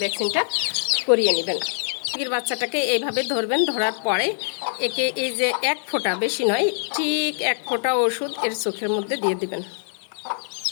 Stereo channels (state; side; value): silent; right; digital silence